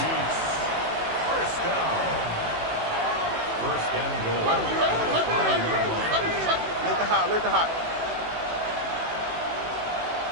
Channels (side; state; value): left; late; 18 ms